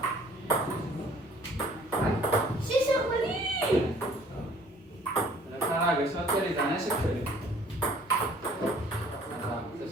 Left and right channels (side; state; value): both; normal; correlation 0.55